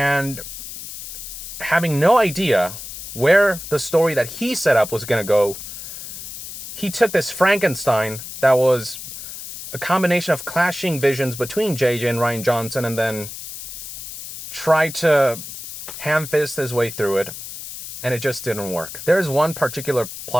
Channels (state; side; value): noise; left; hiss, 11 dB below the sound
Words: having no idea where the story that he set up was going to go, he took this Frankenstein that was a combination of clashing visions between JJ and Rian Johnson, and then tried to ham-fist his way through it, and it just didn't work. There's one particular